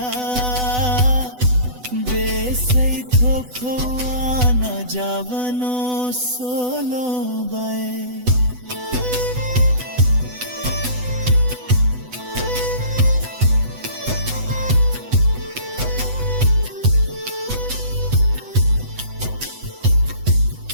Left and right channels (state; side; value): late; left; 8.0 ms